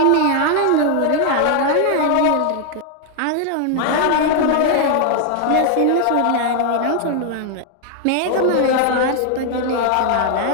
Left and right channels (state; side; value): different; both; correlation 0.00